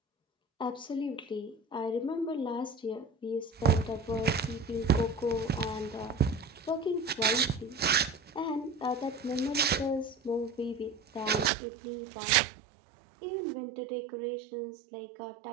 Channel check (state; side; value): drops out; left; at 11.5 s